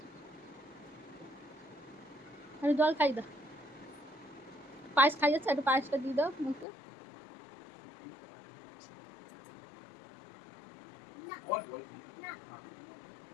আরে জল খাই দাও, পায়েস খাই যাচ্ছে, একটু পায়েসটা দিয়ে দাও মুখে।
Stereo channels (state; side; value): drops out; right; at 6.7 s